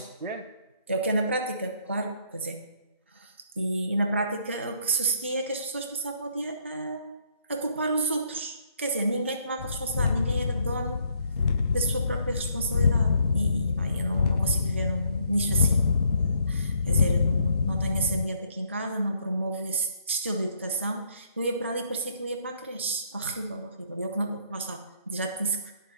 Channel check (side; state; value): both; inverted; correlation -0.69